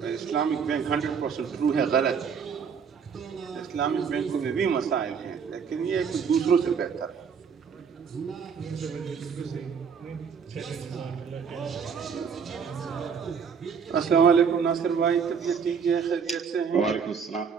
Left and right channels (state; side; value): quieter; left; 6.5 dB